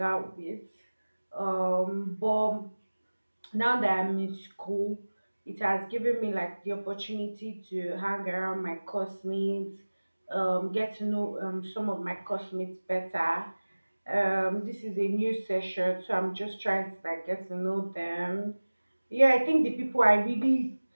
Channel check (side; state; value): both; inverted; correlation -1.00